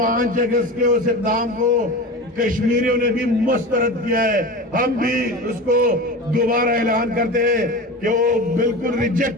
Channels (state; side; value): normal; both; correlation 0.29